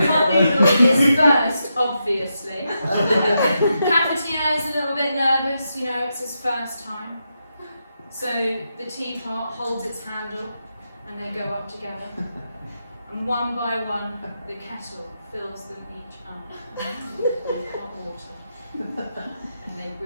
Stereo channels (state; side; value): inverted; both; correlation -0.85